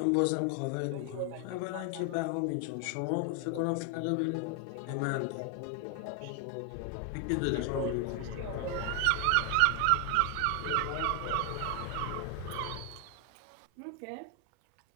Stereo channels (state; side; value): different; both; correlation 0.00